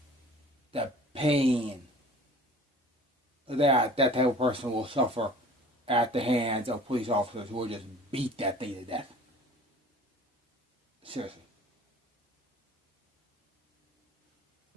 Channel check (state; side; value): normal; both; correlation 0.46